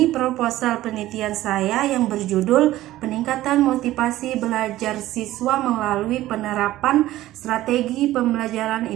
proposal penelitian saya yang berjudul Peningkatan Motivasi Belajar Siswa Melalui Penerapan Strategi Pembelajaran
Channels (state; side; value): quieter; left; 15.3 dB